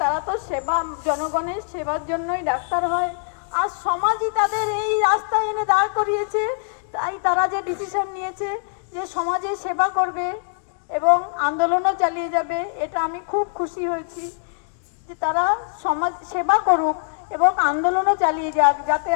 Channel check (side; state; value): right; silent; digital silence